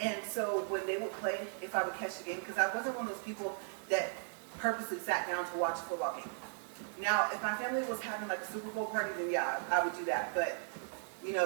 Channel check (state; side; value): silent; left; 53 dB below the other